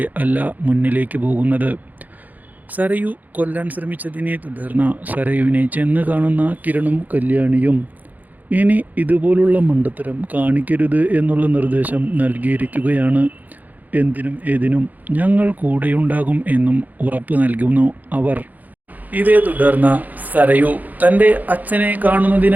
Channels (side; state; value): left; late; 0.081 ms